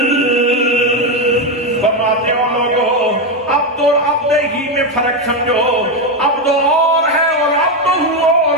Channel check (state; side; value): normal; both; correlation 0.09